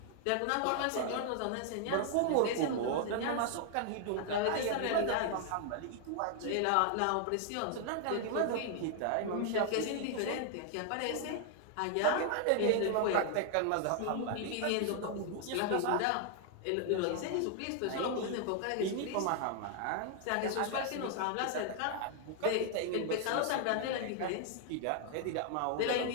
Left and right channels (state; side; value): different; both; correlation 0.00